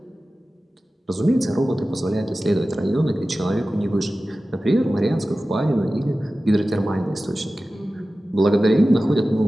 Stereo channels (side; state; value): both; normal; correlation 0.95